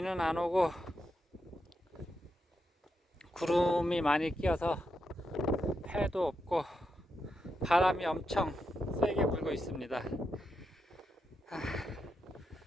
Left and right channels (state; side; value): normal; both; correlation 0.84